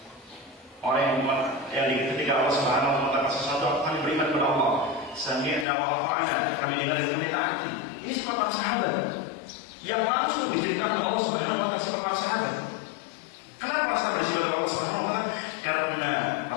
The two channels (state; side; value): drops out; right; at 5.7 s